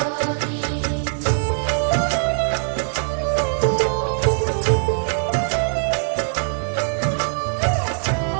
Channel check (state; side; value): silent; left; digital silence